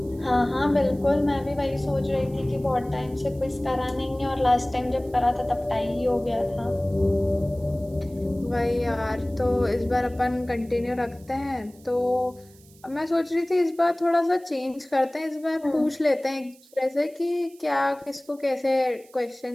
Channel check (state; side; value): noise; right; hiss, 27 dB below the sound